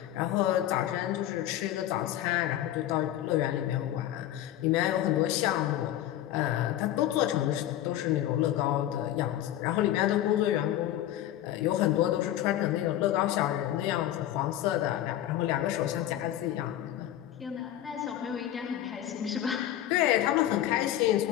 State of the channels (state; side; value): quieter; right; 12.7 dB